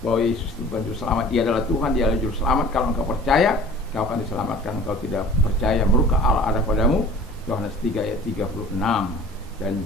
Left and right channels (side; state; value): both; normal; correlation 0.45